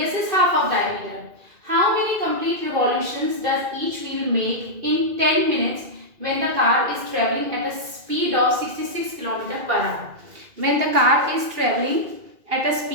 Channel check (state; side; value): late; left; 2.4 ms